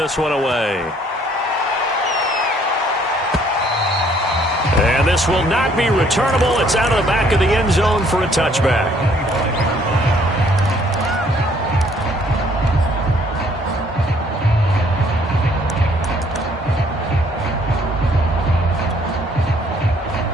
one away. And this will not be returnable. It's out of the back of the end zone for a touchback.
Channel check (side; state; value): both; normal; correlation 0.63